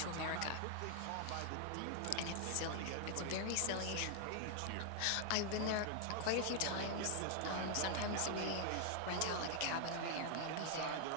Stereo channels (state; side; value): different; both; correlation 0.00